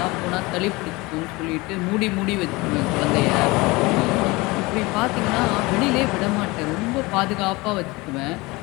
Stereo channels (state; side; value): quieter; right; 23.2 dB